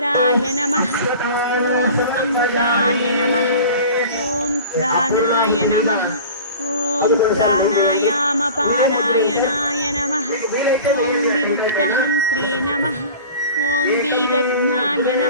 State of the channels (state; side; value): inverted; both; correlation -0.39